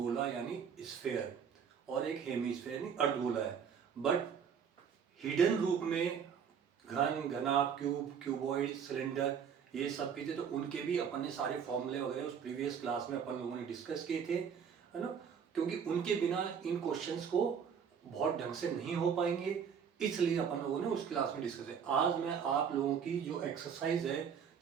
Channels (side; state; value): left; quieter; 7.3 dB